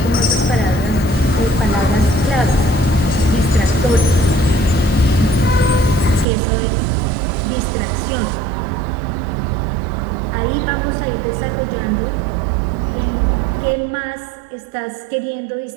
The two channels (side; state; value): left; drops out; at 6.2 s